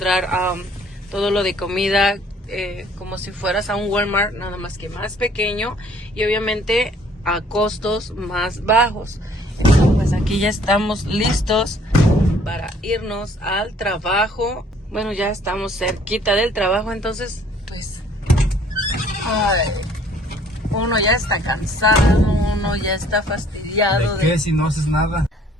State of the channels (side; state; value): both; normal; correlation 0.58